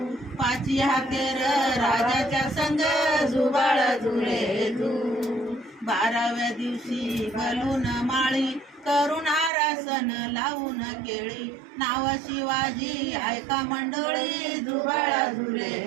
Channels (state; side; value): drops out; left; at 9.5 s